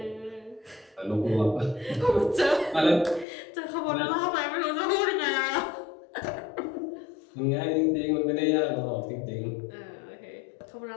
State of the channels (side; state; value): right; drops out; at 3.2 s